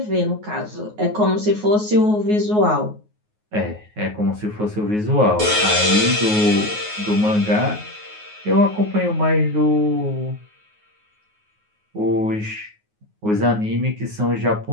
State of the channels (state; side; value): late; left; 9.5 ms